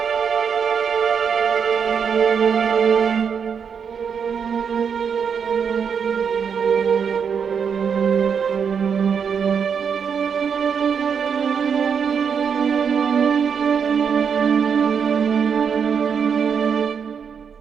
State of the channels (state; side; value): quieter; left; 6.8 dB